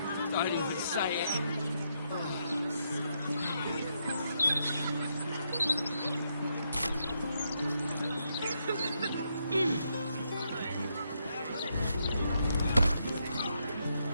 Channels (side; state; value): both; inverted; correlation -0.79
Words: don't even say it.